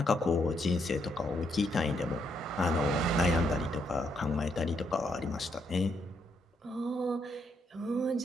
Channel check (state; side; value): normal; both; correlation 0.75